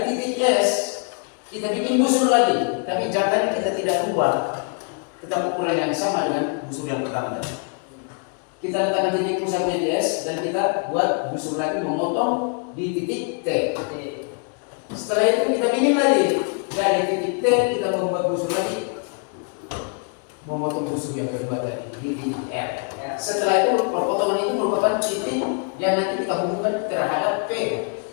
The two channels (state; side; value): quieter; right; 38.5 dB